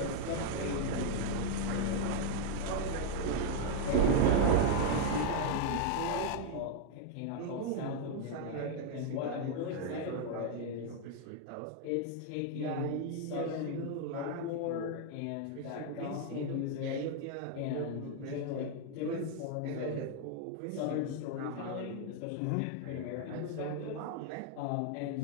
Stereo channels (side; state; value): both; different; correlation 0.00